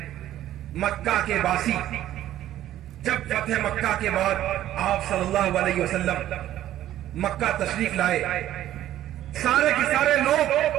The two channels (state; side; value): quieter; left; 12.9 dB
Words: مکہ کے باسی جب فتح مکہ کے بعد آپ صلی اللہ علیہ وسلم مکہ تشریف لائے، سارے کے سارے